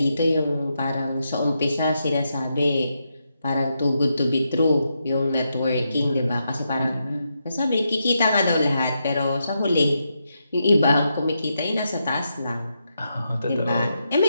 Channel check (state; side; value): inverted; both; correlation -0.84